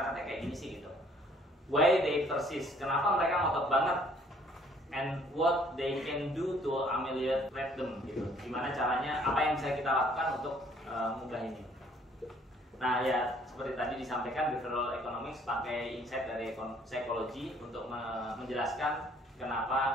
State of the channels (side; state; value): both; normal; correlation 0.60